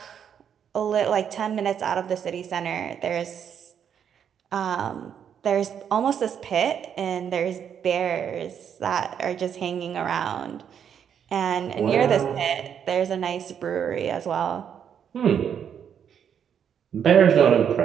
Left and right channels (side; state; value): left; quieter; 8.3 dB